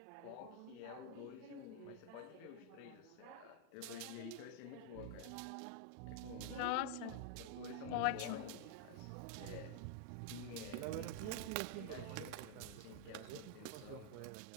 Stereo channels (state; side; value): different; both; correlation 0.00